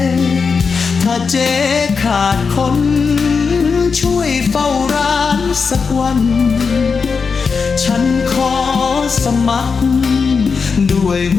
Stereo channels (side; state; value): right; quieter; 5.3 dB